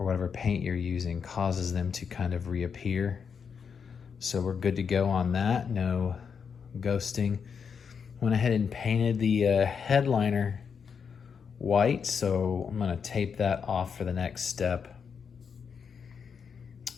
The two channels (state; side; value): quieter; right; 6.5 dB